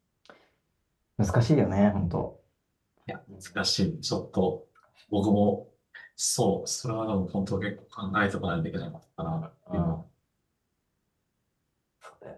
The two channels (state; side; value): identical; both; correlation 1.00